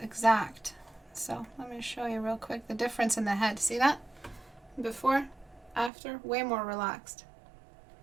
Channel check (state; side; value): drops out; left; at 5.9 s